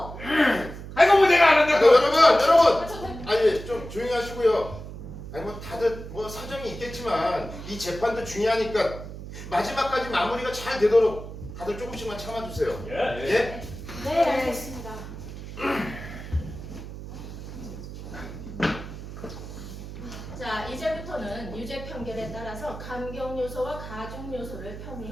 아이고 뭐 내가 안 한다고. 여러분, 아, 저 아니 좀 조용히 하시고요. 아니 뭐 다들 뭐 사정이 있겠지만 이 재판도 중요하니까 마지막까지 마무리가 잘 되도록 다들 조금씩만 참아주세요. 예? 네, 알겠습니다. 자, 이제부터는 유죄 판결에 따라서 감경 요소와 가중 요소를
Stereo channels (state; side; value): noise; right; hum, 11 dB below the sound